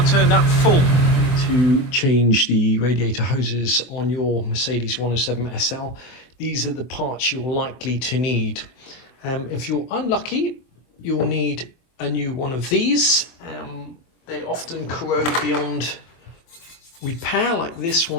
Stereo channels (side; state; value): right; late; 24 ms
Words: turned up full. To change the radiator hoses on your Mercedes 107 SL, these are the parts you're likely to need. If you're unlucky, you'll need a new one of these. They often corrode beyond repair, like this